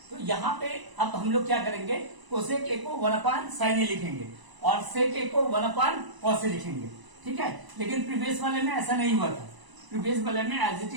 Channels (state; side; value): late; left; 1.0 ms